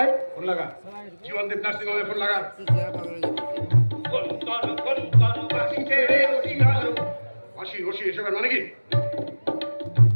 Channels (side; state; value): both; inverted; correlation -1.00